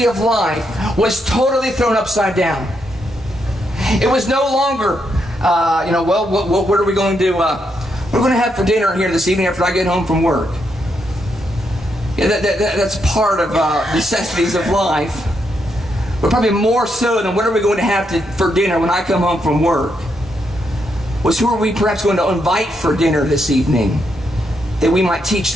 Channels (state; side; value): normal; both; correlation 0.80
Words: of life was totally thrown upside down. It was no longer, what are we going to do? We're going to have for dinner here this evening after I get home from work. Yeah, that's part of necessities of life. But probably more so than what are we going to have for dinner when I come home from work was who are we perhaps going to invite for dinner this evening that we might teach